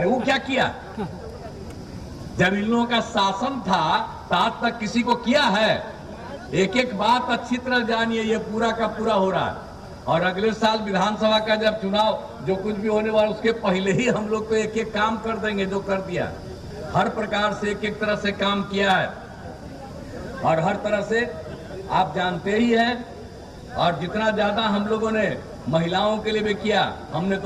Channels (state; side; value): identical; both; correlation 1.00